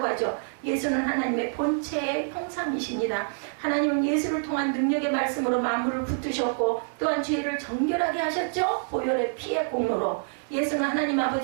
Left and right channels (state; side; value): silent; left; 59 dB below the other